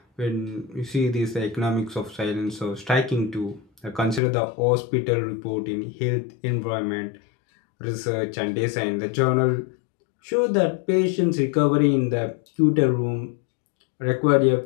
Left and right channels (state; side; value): drops out; right; at 4.2 s